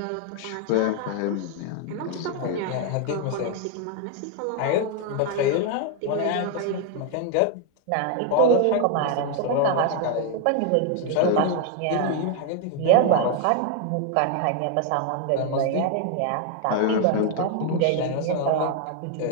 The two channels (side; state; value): both; different; correlation 0.01